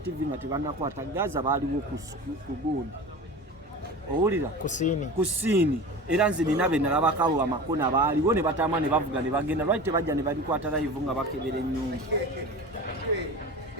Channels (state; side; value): normal; both; correlation 0.33